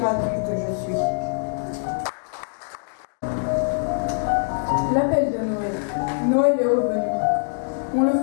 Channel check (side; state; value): right; silent; digital silence